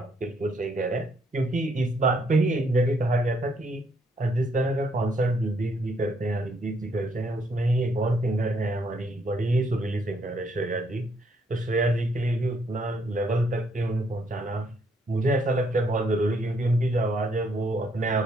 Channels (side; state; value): both; normal; correlation 0.71